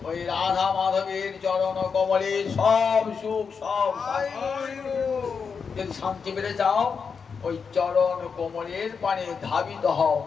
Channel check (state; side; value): quieter; right; 5.8 dB